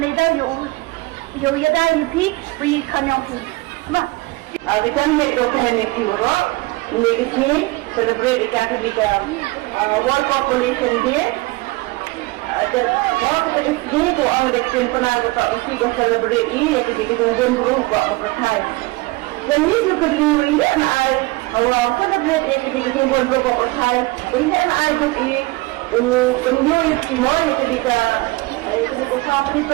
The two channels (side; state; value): left; quieter; 22.7 dB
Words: yo yada yupi bagi kanyang tu. Mah. Awitan me documentary bro. Ini celebrate ikan tu World Population Day. Dan kalau kita ini tu orang dektin pernah kita mesti celebrate ini ketika kita jumpa buat percaya. Dan ini juga ini I awal celebrate ketika kita jumpa buat percaya. Ini I juga penjual semua ketika sampai